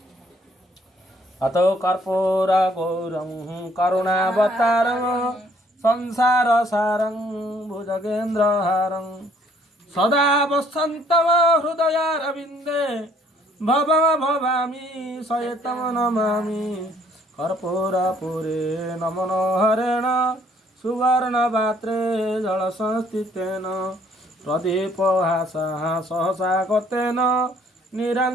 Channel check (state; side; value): normal; both; correlation 0.63